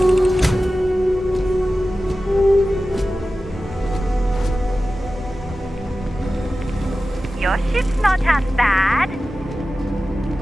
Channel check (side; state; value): both; normal; correlation 0.95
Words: Your ship's not half bad.